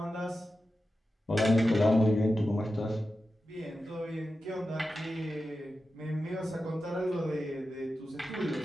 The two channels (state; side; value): normal; both; correlation 0.92